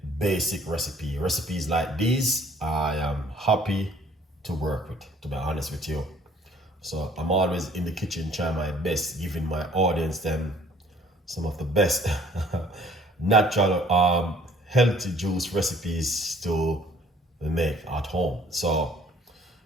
basic recipes like these. I am happy to work with, to be honest with you. So I'm always in the kitchen trying my best, giving my audience them some of the best natural healthy juice recipes to make at home. So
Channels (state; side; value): normal; both; correlation 0.56